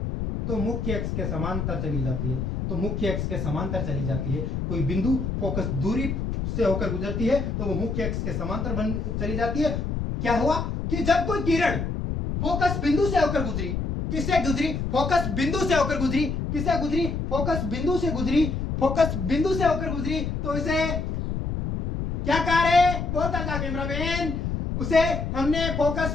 तो मुख्य अक्ष के समांतर चली जाती है, तो मुख्य अक्ष के समांतर चली जाती है। कोई बिंदु फोकस दूरी से होकर गुजरती है तो वो मुख्य अक्ष के समांतर बन चली जाती है। क्या हुआ कि जब कोई किरण फोकस बिंदु से होकर गुजरी, किससे गुजरी? फोकस बिंदु से होकर गुजरी। किससे गुजरी? फोकस बिंदु से गुजरी। फोकस बिंदु से होकर गुजरी तो इसे क्या कहा रे? बोलता था कैमरामैन, उसे हमने फोकस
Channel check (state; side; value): noise; left; rumble, 2 dB below the sound